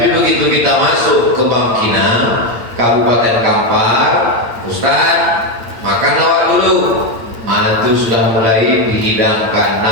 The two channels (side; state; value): left; late; 8.8 ms